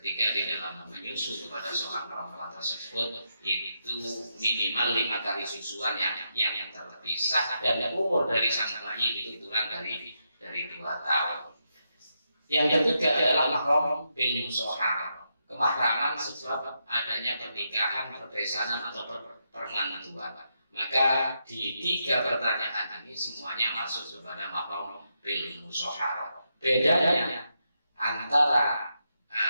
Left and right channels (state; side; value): inverted; both; correlation -0.83